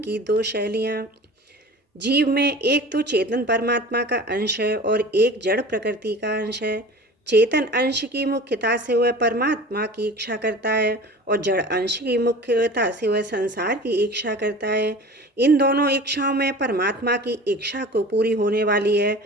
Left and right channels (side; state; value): both; normal; correlation 0.39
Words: दो शैलियाँ। जीव में एक तो चेतन परमात्मा का अंश है और एक जड़ प्रकृति का अंश है। चेतन अंश की मुख्यता से वह परमात्मा की इच्छा करता है और जड़ अंश की मुख्यता से वह संसार की इच्छा करता है। इन दोनों इच्छाओं में परमात्मा की इच्छा को पूरी होने वाली है,